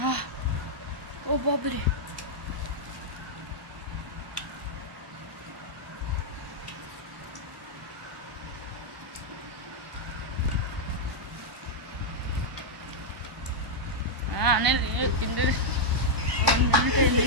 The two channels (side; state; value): left; late; 1.0 ms